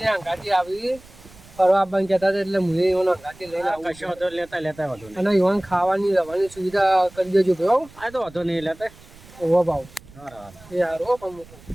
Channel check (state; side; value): noise; right; rumble, 23 dB below the sound